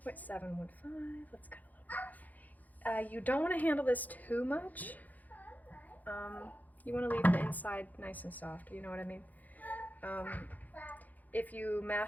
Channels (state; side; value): late; right; 0.081 ms